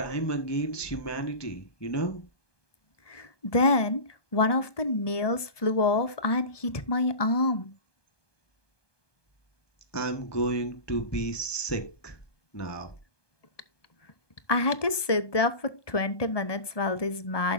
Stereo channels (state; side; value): late; right; 1.2 ms